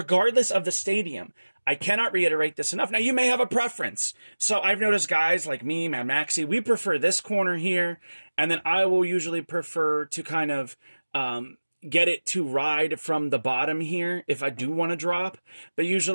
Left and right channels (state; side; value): inverted; both; correlation -1.00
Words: of the stadium, I cannot reiterate this enough. Now, you may have a preference. So I've noticed guys like me, Mad Maxi, we prefer this corner here, and then I will usually prefer to kind of, get it to ride from the bottom here if I do want to drop, but